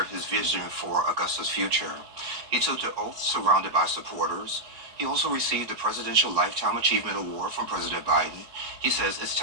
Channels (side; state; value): left; late; 4.7 ms